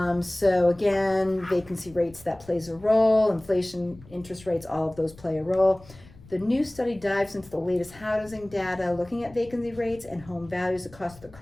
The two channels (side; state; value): left; noise; rumble, 22 dB below the sound